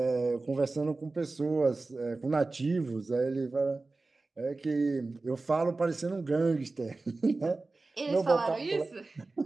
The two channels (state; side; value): quieter; left; 3.5 dB